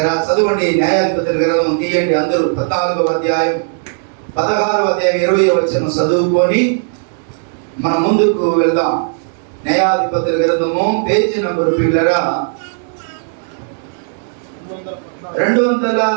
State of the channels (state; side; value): silent; left; 64 dB below the other